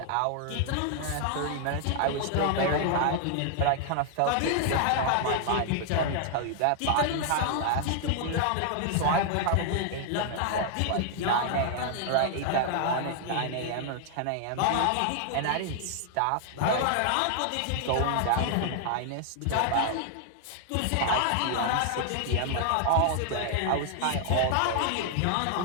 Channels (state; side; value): different; both; correlation 0.00